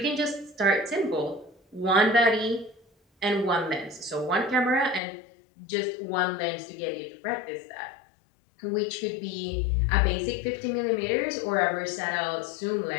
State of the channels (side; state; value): right; drops out; at 5.0 s